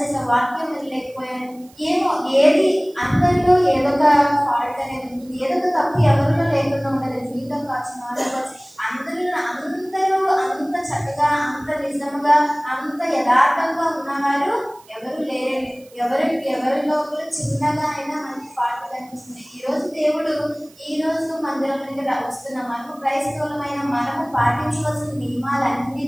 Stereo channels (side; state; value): right; noise; hiss, 27 dB below the sound